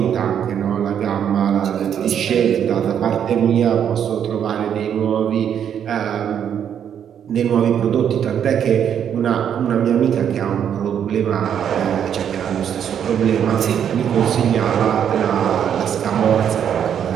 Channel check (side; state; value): left; quieter; 8.8 dB